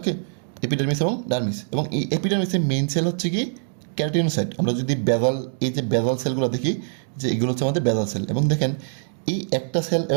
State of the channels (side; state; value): left; silent; digital silence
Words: এপিডার্মিস এবং ডার্মিস। এবং এই এপিডার্মিসের মেইন সেল হচ্ছে কি? ক্যারাটিনোসাইট। আমরা যদি বেজাল, এই যে বেজাল সেলগুলো দেখি, যে এগুলো হচ্ছে আমাদের বেজাল সেল। এবং দেখেন এই একটা সেল